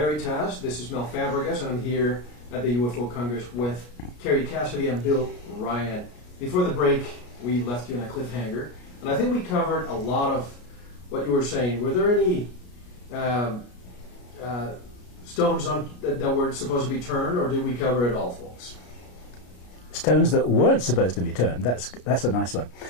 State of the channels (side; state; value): right; late; 33 ms